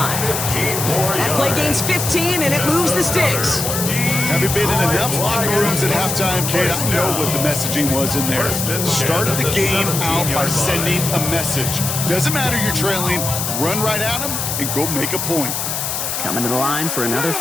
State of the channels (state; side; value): noise; left; hiss, 2 dB below the sound